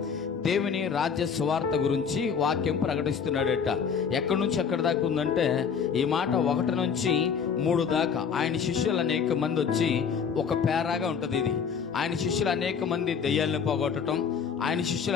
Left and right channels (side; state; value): right; quieter; 6.6 dB